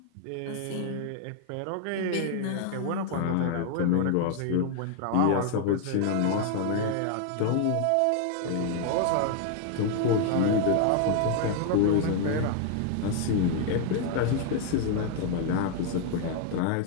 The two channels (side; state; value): both; different; correlation 0.00